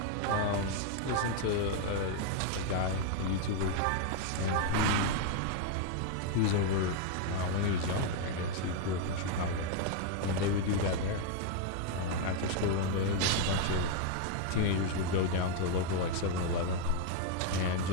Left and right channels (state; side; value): different; both; correlation 0.01